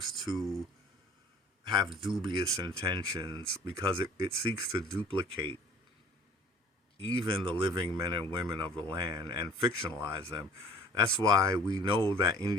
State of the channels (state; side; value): normal; both; correlation 0.50